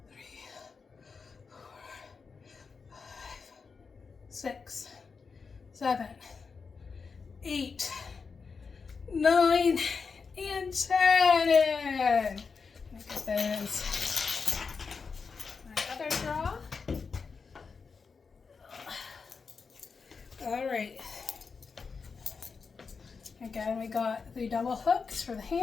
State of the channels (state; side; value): quieter; right; 5.1 dB